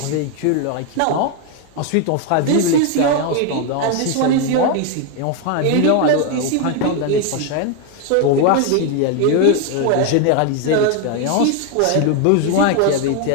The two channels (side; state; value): both; different; correlation 0.01